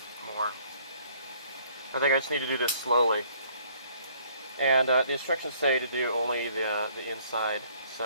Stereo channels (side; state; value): both; inverted; correlation -0.61